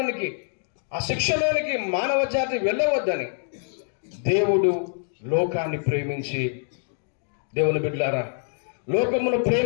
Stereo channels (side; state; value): right; silent; digital silence